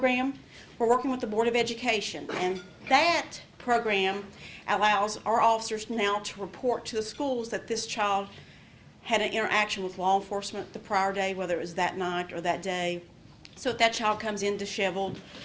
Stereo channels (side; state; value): both; identical; correlation 1.00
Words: We're working with the Board of Education, and that program allows our officers now to report to the schools that this child had an interaction with law enforcement the prior day, whether it was that night or that day. So if that child comes in disheveled,